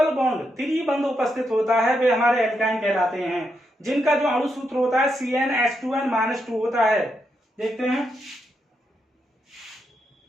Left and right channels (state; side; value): normal; both; correlation 0.82